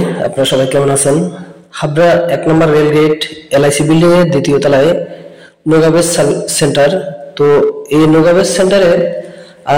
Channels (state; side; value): identical; both; correlation 1.00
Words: আপনারা সবাই কেমন আছেন? হাবড়া 1 নম্বর রেলগেট এলআইসি বিল্ডিং এর দ্বিতীয় তলায় নোগাবেজ সেন্টার। তো এই নোগাবেজ সেন্টারে